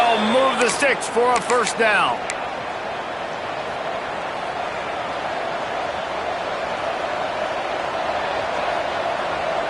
move the sticks for a first down.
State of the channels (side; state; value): both; identical; correlation 1.00